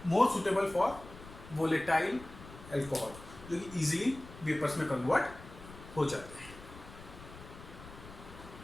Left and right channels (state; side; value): noise; left; rumble, 16 dB below the sound